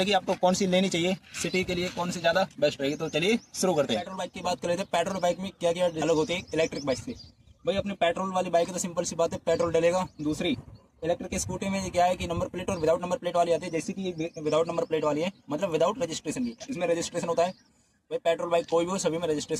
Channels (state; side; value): identical; both; correlation 1.00